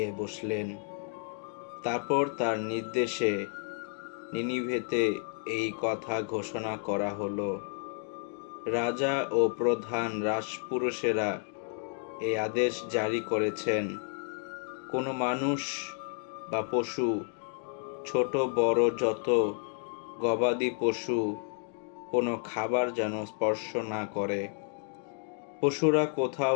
বসলেন। তারপর তার নির্দেশে নিনিভেতে এই কথা ঘোষণা করা হলো। রাজা ও প্রধান রাজপুরুষেরা এই আদেশ জারি করেছেন, কোনো মানুষ বা পশু, ছোট বড় যত গবাদি পশু, কোনো খাবার যেন স্পর্শ না করে। পশুরা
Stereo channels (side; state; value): right; silent; 57 dB below the other